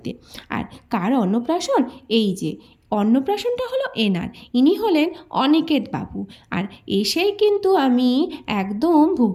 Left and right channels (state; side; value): identical; both; correlation 1.00